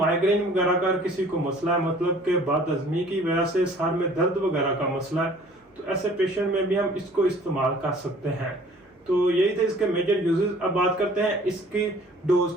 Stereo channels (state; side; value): normal; both; correlation 0.52